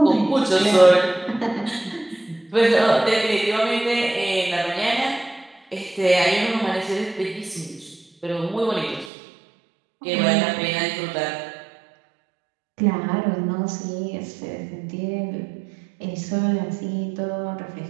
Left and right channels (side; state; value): left; drops out; at 9.1 s